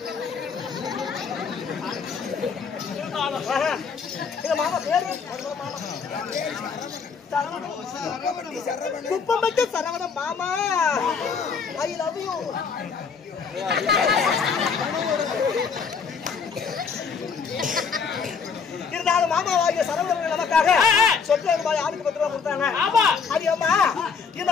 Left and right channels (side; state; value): right; quieter; 5.7 dB